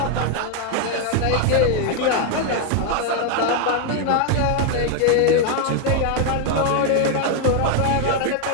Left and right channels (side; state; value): both; different; correlation 0.01